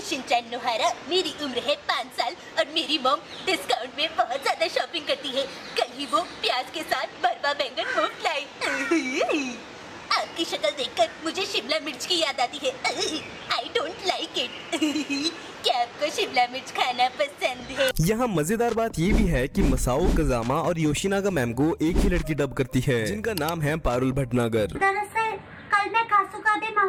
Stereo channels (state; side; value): identical; both; correlation 1.00